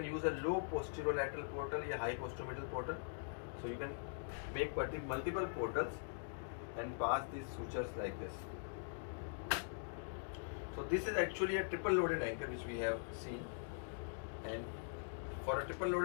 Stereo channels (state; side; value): silent; right; digital silence